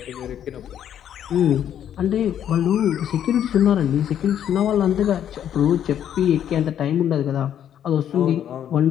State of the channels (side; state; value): right; quieter; 9.9 dB